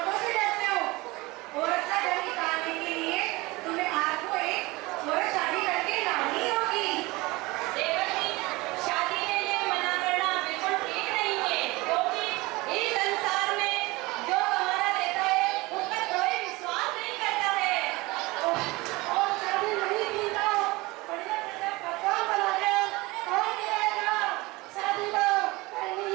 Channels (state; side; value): quieter; left; 22.4 dB